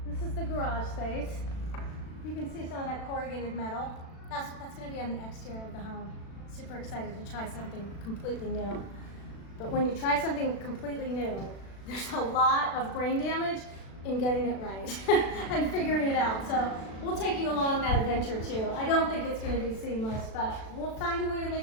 this is the garage space. You can see some of that corrugated metal. That's going to be on the exterior of the home. Super excited to try something completely new. But when you try something completely new, there's a lot of brain damage in getting it right and figuring it out. So we'll take you along that adventure too. I don't think it's going to be seamless, but we'll find a way to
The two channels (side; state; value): right; late; 36 ms